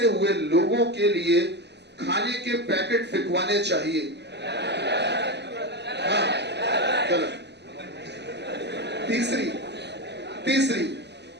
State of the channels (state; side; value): late; left; 0.50 ms